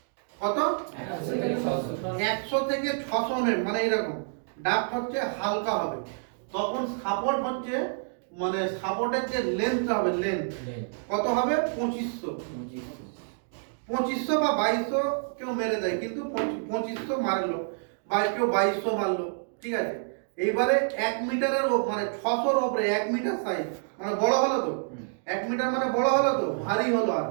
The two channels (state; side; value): silent; left; digital silence